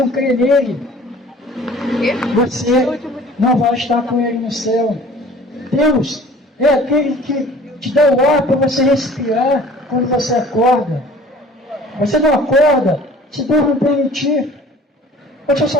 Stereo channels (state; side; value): normal; both; correlation 0.48